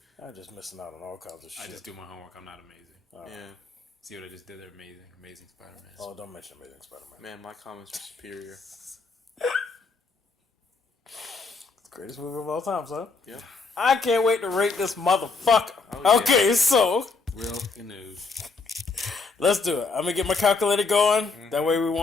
I'm just missing out on all kinds of shit. I just do my homework. I'm not amazing. Yeah. See what I just did there? Amazing. Amazing Spider-Man. Oh, don't mention Amazing Spider-Man. Man, my comments were superior. Greatest movie of all time, son. Yeah. I can't wait to rate this motherfucker. Oh, yeah. Okay, so Real news. let's do it. I'm gonna get my calculator going. That way we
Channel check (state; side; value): quieter; right; 4.2 dB